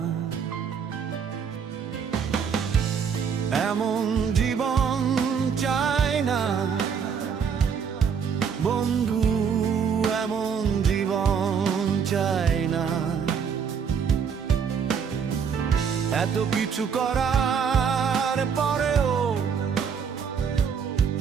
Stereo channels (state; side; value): quieter; left; 6.8 dB